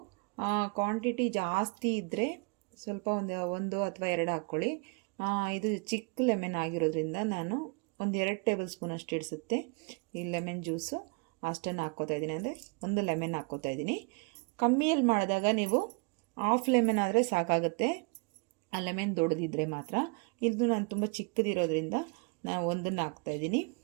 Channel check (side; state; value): left; quieter; 33.2 dB